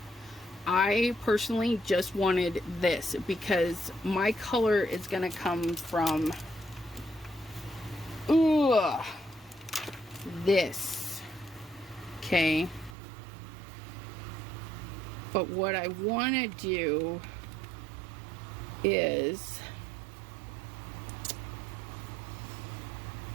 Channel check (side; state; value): left; drops out; at 13.0 s